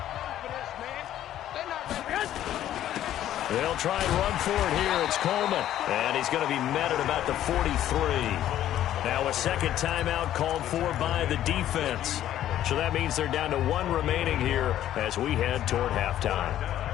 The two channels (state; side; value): quieter; right; 12.1 dB